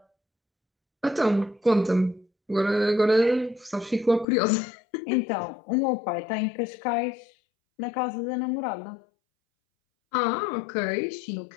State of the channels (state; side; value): drops out; right; at 4.2 s